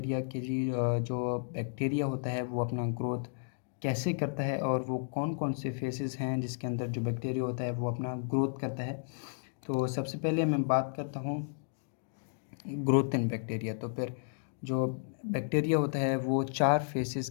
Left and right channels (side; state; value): right; silent; digital silence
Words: के जी जो बैक्टीरिया होता है वो अपना ग्रोथ कैसे करता है और वो कौन कौन से फेसेस हैं जिसके अंदर जो बैक्टीरिया होता है वो अपना ग्रोथ करता है। तो सबसे पहले मैं बात करता हूँ ग्रोथ एंड बैक्टीरिया। तो फिर जो बैक्टीरिया होता है वो 4 फेसेस